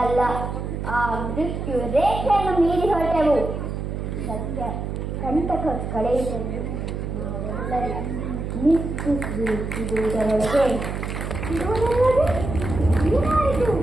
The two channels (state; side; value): noise; right; hum, 4 dB below the sound